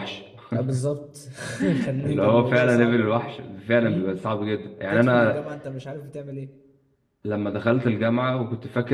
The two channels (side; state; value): both; identical; correlation 1.00